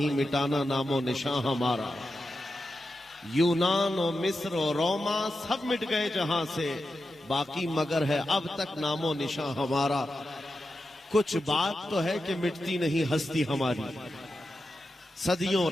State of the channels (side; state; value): both; normal; correlation 0.90